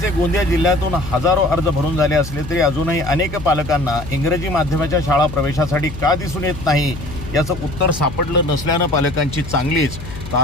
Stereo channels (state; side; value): noise; left; hum, 12 dB below the sound